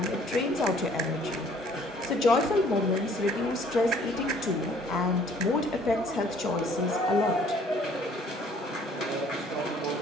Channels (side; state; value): both; normal; correlation 0.57